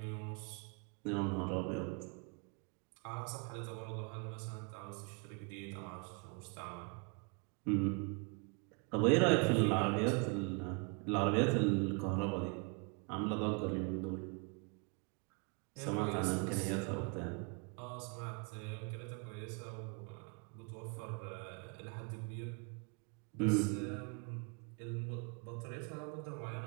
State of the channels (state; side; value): quieter; left; 35.1 dB